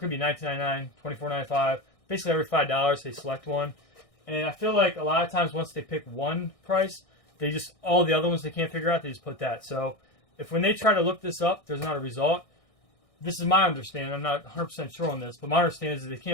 be $19.99, $24.95. Basically every $5 they select one. And I feel like a lot of times once they pick one price, they just, all the other ones they can't figure out, they just put that. So if when they try to look this up, there's not a result. This is my understanding. I'm not 100% sure on this, but my understanding is that they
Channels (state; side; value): late; right; 1.6 ms